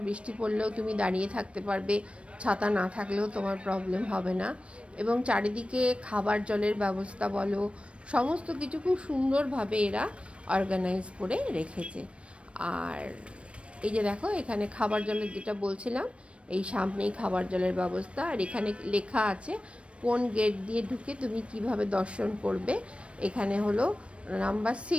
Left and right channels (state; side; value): late; left; 0.060 ms